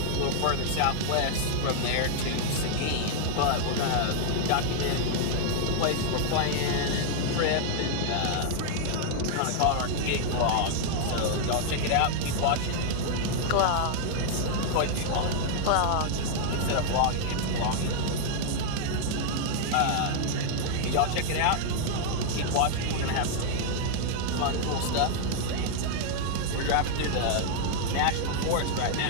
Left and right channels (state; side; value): different; both; correlation 0.00